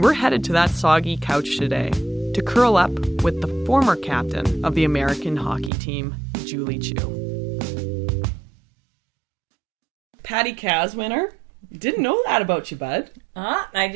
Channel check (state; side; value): drops out; left; at 5.7 s